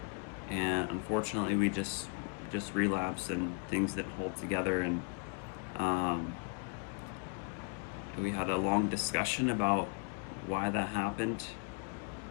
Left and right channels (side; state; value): right; quieter; 38.4 dB